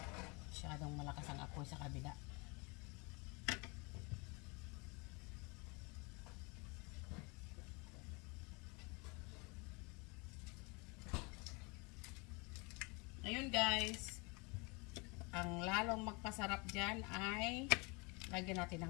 Masyadong malakas ang apoy sa kabila. Ayun guys, ang lalong magpasarap dyan ay lagyan natin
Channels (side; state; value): right; quieter; 29.3 dB